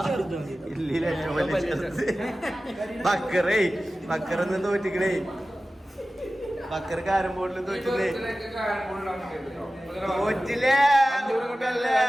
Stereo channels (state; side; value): normal; both; correlation 0.96